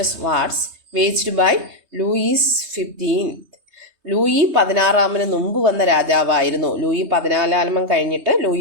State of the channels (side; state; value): left; late; 3.2 ms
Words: wars waged by Louis 15. Louis 16 മുമ്പ് വന്ന രാജാവായിരുന്നു. ലൂയി 14 കഴിഞ്ഞിട്ട്